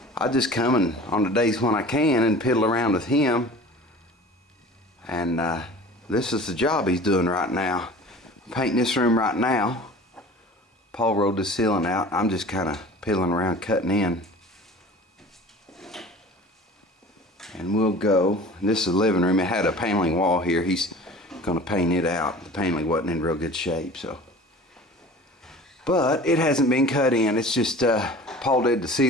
I just come in on the days when I can and piddle around with him. And this is the job he's doing right now. Painting this room right now. Paul rolled the ceiling out. I'm just kind of piddling around cutting in. And we'll go. This is the living room. It had a paneling wall here. He's going to paint it out. The paneling wasn't in real good shape, so. But it hasn't been cut in. It's just Paul did the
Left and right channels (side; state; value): both; normal; correlation 0.42